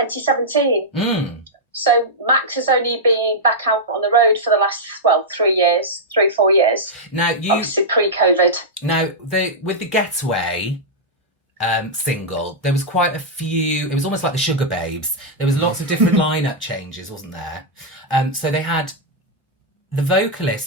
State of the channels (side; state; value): both; normal; correlation -0.07